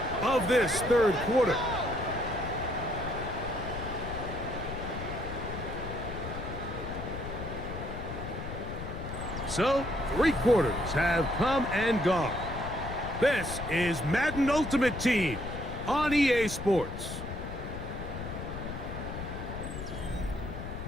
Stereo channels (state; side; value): noise; left; rumble, 7 dB below the sound